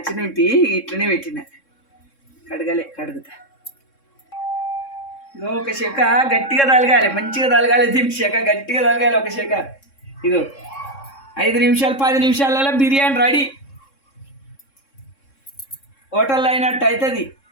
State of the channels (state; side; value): late; right; 3.6 ms